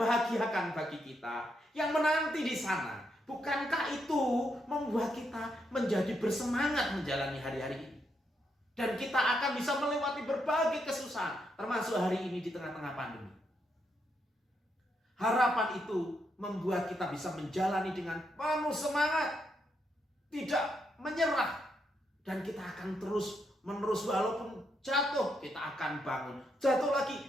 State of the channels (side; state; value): both; normal; correlation 0.79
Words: bagi kita, yang menanti di sana. Bukankah itu membuat kita menjadi bersemangat menjalani hari-hari ini? Dan kita akan bisa melewati berbagai kesusahan, termasuk hari ini di tengah-tengah pandemi. Harapan itu membuat kita bisa menjalani dengan penuh semangat, tidak menyerah. Dan kita akan terus menerus, walaupun jatuh, kita akan bangun. Jatuh lagi,